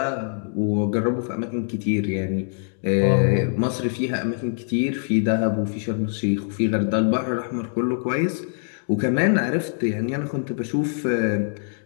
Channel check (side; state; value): right; silent; digital silence